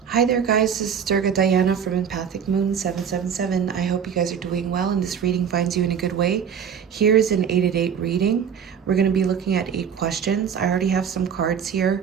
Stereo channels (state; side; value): quieter; left; 7.6 dB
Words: Hi there guys, this is Durga Diana from Empathic Moon 777. I hope you guys are doing well and this reading finds you in a good way. Here's an 8 at 8 reading. We're going to be looking at 8 questions. I already have some cards here.